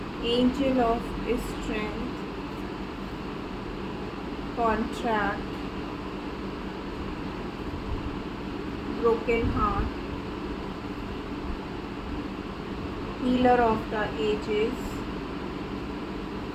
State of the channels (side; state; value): both; identical; correlation 1.00